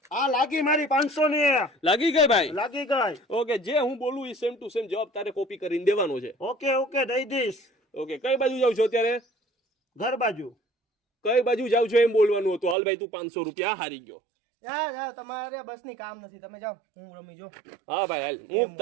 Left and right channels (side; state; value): left; drops out; at 12.8 s